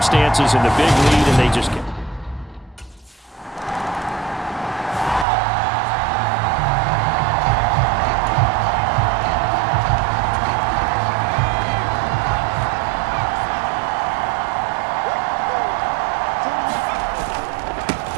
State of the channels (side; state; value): left; drops out; at 5.2 s